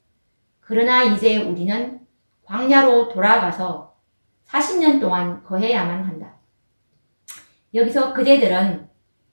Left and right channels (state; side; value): inverted; both; correlation -1.00